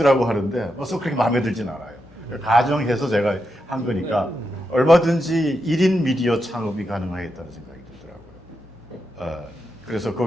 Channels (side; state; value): both; normal; correlation 0.86